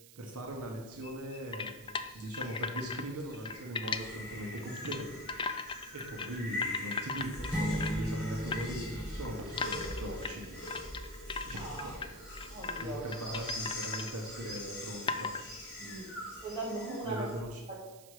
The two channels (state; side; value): noise; right; hiss, 18 dB below the sound